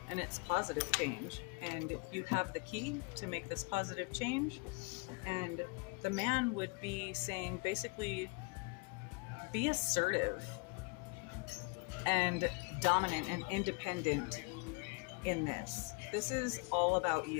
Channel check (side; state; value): right; quieter; 30.4 dB